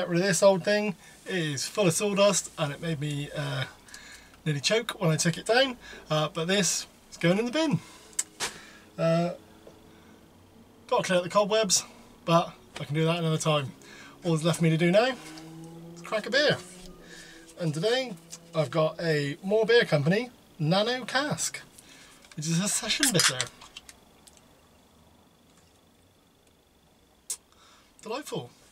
rid of this old thing. It is full of sawdust and it made me nearly choke when I took it down, but this is going in the bin. Got to clear out the cobwebs, but I can do that another time. All that's left for me to do now is crack a beer. And today I've got a More Beer Company Nano Cask, which is a session bitter. Delightful.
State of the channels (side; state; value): both; identical; correlation 1.00